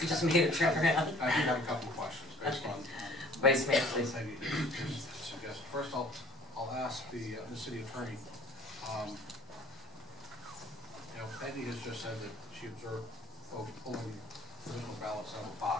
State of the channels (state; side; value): normal; both; correlation 0.53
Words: You just made it trip around. I do have a couple of questions based on. Vice Mayor, please. Peggy just suggested. First, I'll ask the city attorney. You know, Peggy has just said that she observed folks pulling provisional ballots out of a